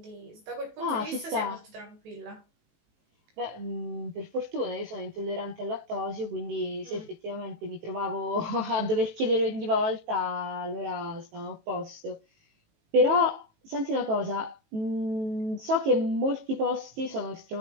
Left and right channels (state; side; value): late; left; 19 ms